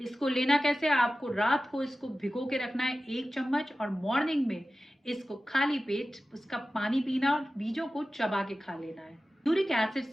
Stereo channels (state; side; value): normal; both; correlation 0.95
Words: इसको लेना कैसे? आपको रात को इसको भिगो के रखना है 1 चम्मच और मॉर्निंग में इसको खाली पेट उसका पानी पीना और बीजों को चबा के खा लेना है। यूरिक एसिड